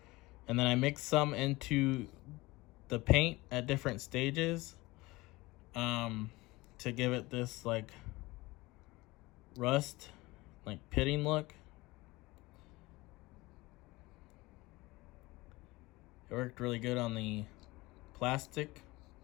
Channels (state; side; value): quieter; right; 21.3 dB